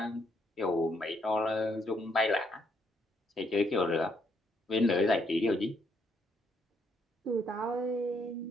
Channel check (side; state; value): both; normal; correlation 0.73